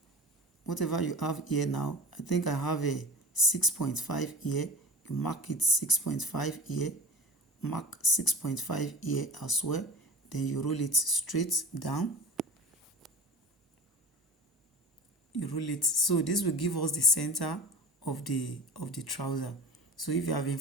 whatever you have here now, I think I have a 6.5 here. You mark it 6.5 here, mark 6.5 here as well. Then you roll it straight down. you roll it. So this will give us the center of the trouser. So if you have been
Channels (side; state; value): both; normal; correlation 0.35